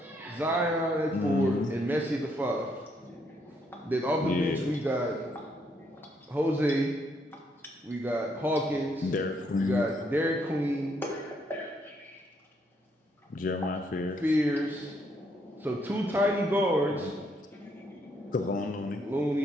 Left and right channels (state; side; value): normal; both; correlation 0.73